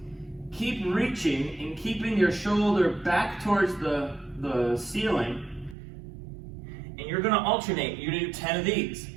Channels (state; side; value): drops out; left; at 5.8 s